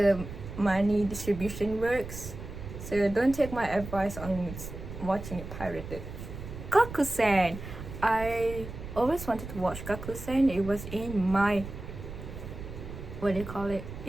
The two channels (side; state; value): right; noise; rumble, 10 dB below the sound